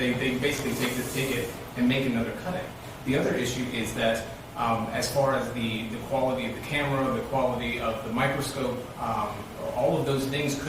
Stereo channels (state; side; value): identical; both; correlation 1.00